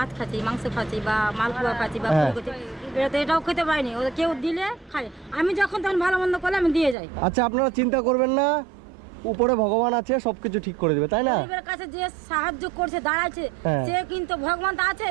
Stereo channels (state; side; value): drops out; left; at 7.0 s